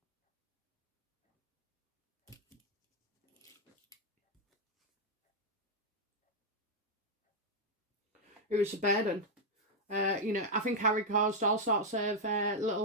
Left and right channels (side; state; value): both; normal; correlation -0.02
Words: It was a burden. You know, I think Harry caused all sorts of